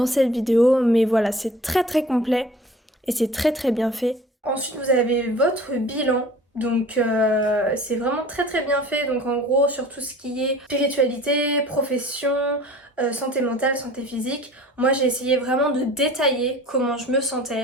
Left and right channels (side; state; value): both; normal; correlation 0.45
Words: cette vidéo, mais voilà, c'est très très complet et c'est très très bien fait. Ensuite, vous avez votre bilan. Donc c'est vraiment très très bien fait, donc en gros sur tout ce qui est spiritualité, profession, santé mentale, santé physique, moi j'ai essayé vraiment de détailler comment je me